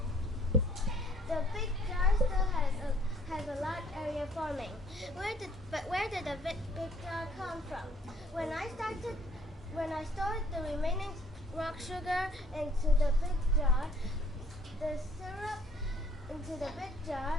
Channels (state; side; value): normal; both; correlation 0.61